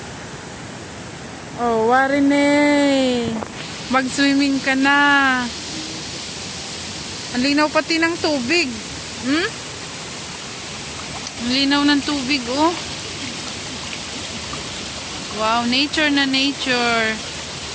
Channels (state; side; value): identical; both; correlation 1.00